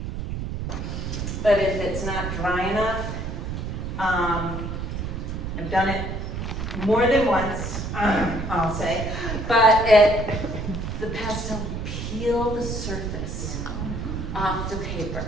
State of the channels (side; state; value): right; noise; rumble, 4 dB below the sound